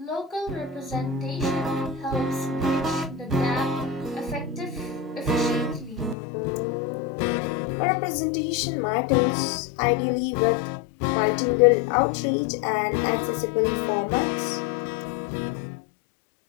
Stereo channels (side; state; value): right; drops out; at 6.2 s